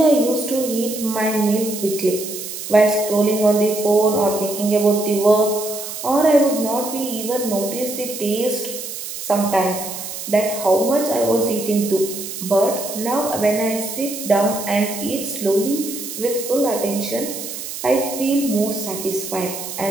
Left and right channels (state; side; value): noise; right; hiss, 8 dB below the sound